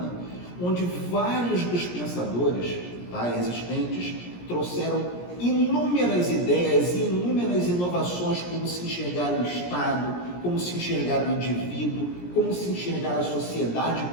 onde vários dos pensadores, tá, existentes trouxeram inúmeras ideias e inúmeras inovações, como se enxergar o Estado, como se enxergar o indivíduo, como se enxergar a sociedade,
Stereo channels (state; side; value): late; right; 17 ms